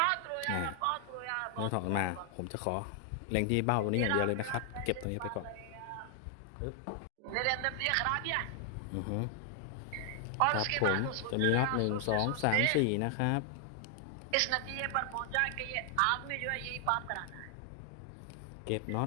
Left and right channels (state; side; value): different; both; correlation 0.00